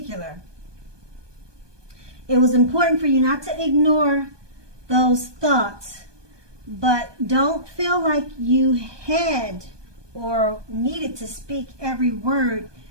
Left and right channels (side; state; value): left; late; 1.2 ms